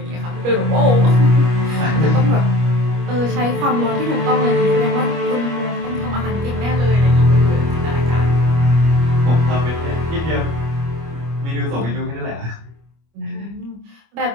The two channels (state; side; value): late; left; 25 ms